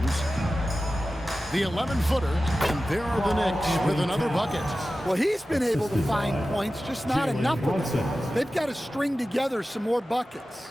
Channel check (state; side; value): normal; both; correlation 0.95